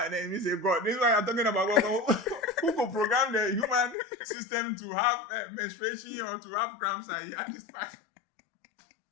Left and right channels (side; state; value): right; drops out; at 4.0 s